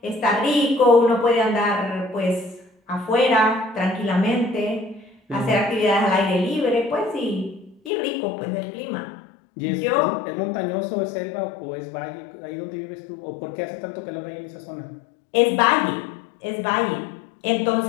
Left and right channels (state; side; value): drops out; right; at 7.9 s